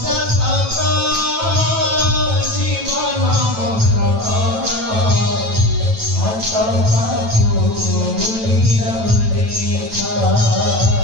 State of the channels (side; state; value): left; late; 9.1 ms